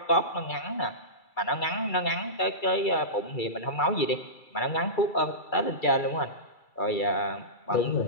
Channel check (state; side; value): late; right; 2.3 ms